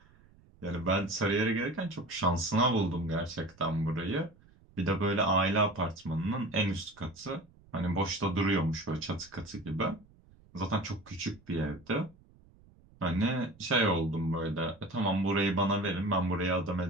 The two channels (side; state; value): right; noise; rumble, 27 dB below the sound